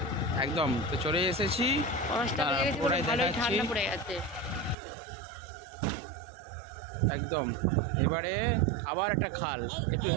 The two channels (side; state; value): left; drops out; at 4.8 s